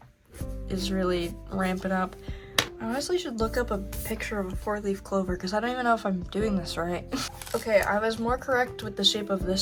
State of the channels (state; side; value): identical; both; correlation 1.00